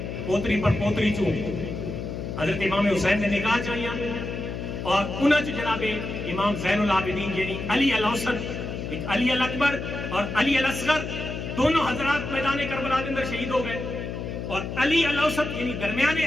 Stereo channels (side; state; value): left; noise; hum, 6 dB below the sound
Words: پوتری پر پوتری چوں حضرت امام حسین نے نکاح چاہیاں اور انہاں چ جناب امام زین العابدین یعنی علی الاوسط ایک علی الاکبر اور علی الاصغر دونوں حضرات میدان کربلا کے اندر شہید ہو گئے اور علی الاوسط یعنی درمیانے